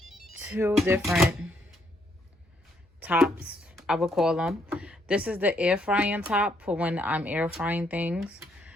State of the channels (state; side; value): normal; both; correlation 0.72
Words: 2 different tops, I would call them. This is the air frying top for when I'm air frying things.